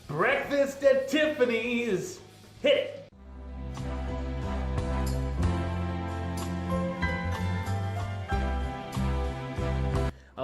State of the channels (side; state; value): both; identical; correlation 1.00